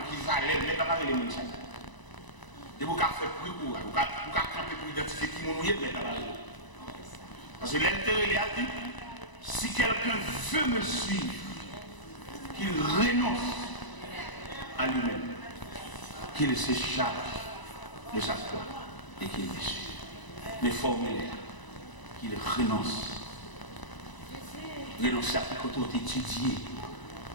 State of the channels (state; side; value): late; right; 1.0 ms